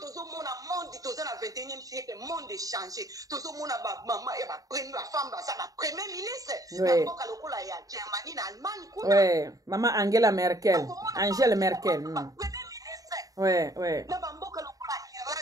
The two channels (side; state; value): left; late; 0.17 ms